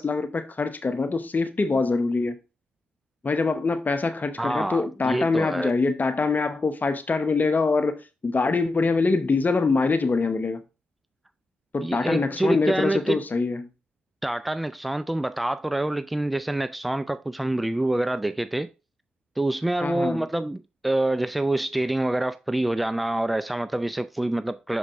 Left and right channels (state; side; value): normal; both; correlation 0.91